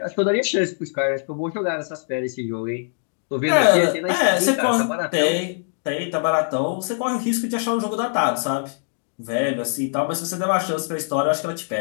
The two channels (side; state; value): right; silent; 64 dB below the other